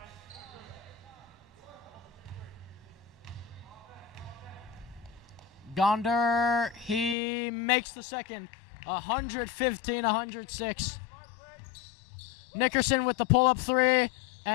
Gonder, he makes the second. 115-106. Nickerson with the pull-up 3,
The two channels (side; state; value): right; drops out; at 7.2 s